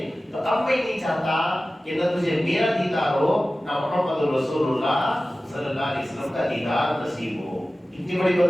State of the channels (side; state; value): both; normal; correlation 0.96